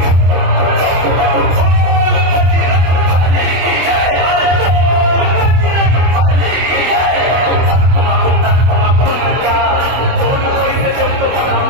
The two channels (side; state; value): left; late; 24 ms